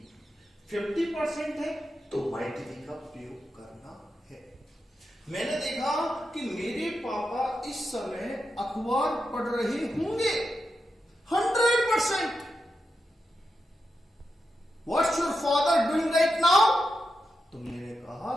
50% है तो माइट बी का प्रयोग करना है। मैंने देखा कि मेरे पापा इस समय अखबार पढ़ रहे होंगे। 100%। What's your father doing right now? तो मैंने कहा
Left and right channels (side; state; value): both; normal; correlation 0.88